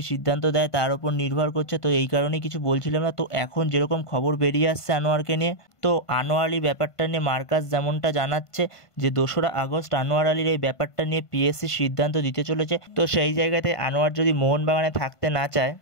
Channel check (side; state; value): right; late; 1.5 ms